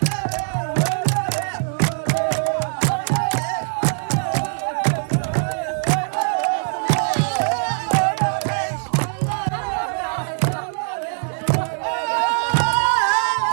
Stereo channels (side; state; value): left; silent; digital silence